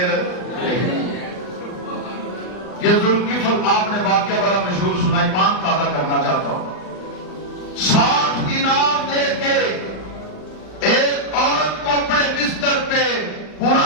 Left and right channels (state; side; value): late; right; 39 ms